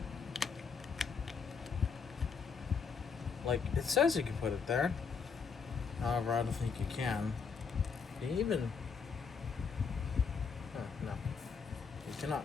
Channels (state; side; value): quieter; right; 5.7 dB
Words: Like, it says you can put it there. However, I don't think you can. Can you even... Oh, no. You cannot.